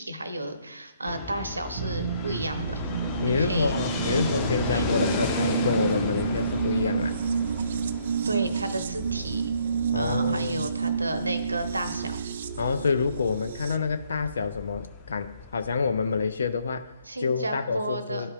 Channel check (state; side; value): inverted; both; correlation -0.67